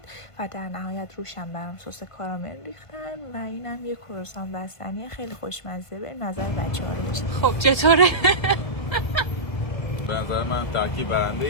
و در نهایت روشم برام سس کارامل ریختن و اینم یه کروسان بستنی خیلی خوشمزه. به نظر بچه‌ها رو بشید. خب چطوره؟ به نظر من ترکیب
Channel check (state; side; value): late; right; 1.5 ms